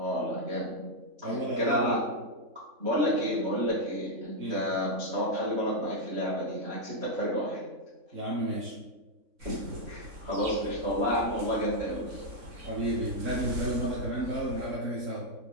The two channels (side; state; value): left; late; 3.6 ms